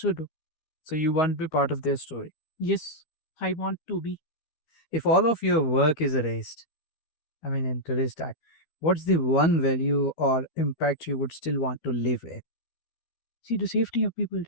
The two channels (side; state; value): right; late; 13 ms